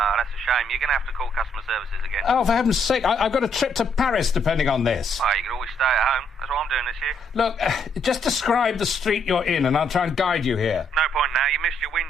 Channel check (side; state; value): both; normal; correlation 0.71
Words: that's a shame. You're going to have to call customer services again. Oh, for heaven's sake, I've got a trip to Paris depending on this. Oh, you could always stay at home. That's what I'm doing this year. Look, just describe the street you're in and I'll try and guide you here. No point now. You missed your